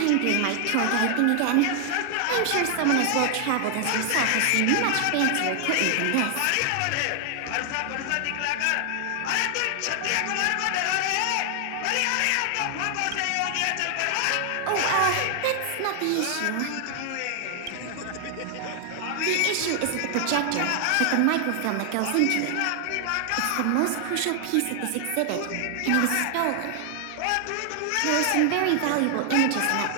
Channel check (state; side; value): different; both; correlation 0.00